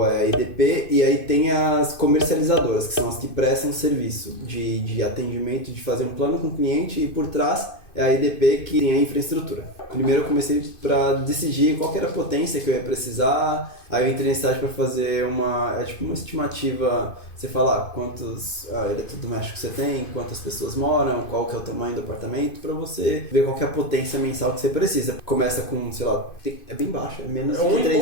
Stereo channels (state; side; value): late; right; 2.5 ms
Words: é a EDP, e aí tem as comercializadoras, que são as que prestam serviço de atendimento, de fazer um plano com o cliente, e por trás é a EDP que tem a infraestrutura. Primeiro eu comecei para decidir qual que era a potência que eu ia precisar, aí eu entrei na cidade para fazer uma estimativa, você fala quantos eletrodomésticos você tem, quantas pessoas moram, qual que é o tamanho do apartamento, para você ver qual que é a potência mensal que você precisa. Começa com, sei lá, é bem baixo, é menos de